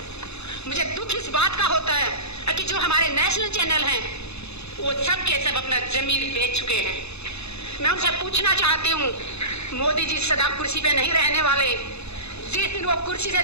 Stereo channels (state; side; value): late; right; 0.80 ms